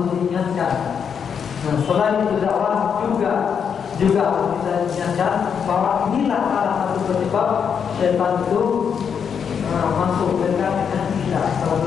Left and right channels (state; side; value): quieter; right; 7.1 dB